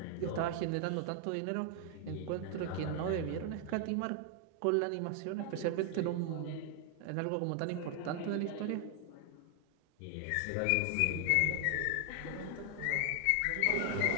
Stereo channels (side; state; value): both; different; correlation 0.00